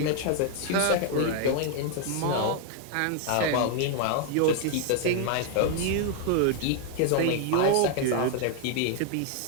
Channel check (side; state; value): both; different; correlation 0.00